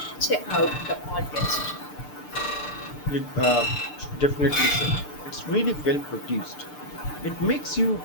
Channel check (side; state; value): right; late; 6.7 ms